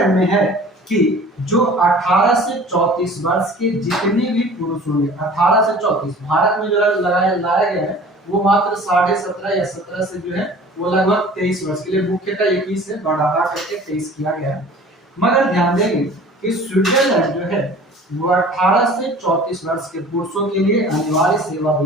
में है कि जो 18 से 34 वर्ष के जितने भी पुरुष होंगे, 18 से 34, भारत में जो लाया गया है वो मात्र 17.5 या 17 से जो है वो लगभग 23 वर्ष के लिए, मुख्यतः 21 से बढ़ा करके 23 किया गया है। मगर ध्यान देंगे कि स्विट्जरलैंड जो है वो 18 से 34 वर्ष के पुरुषों के लिए अनिवार्य सेवा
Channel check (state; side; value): normal; both; correlation 0.45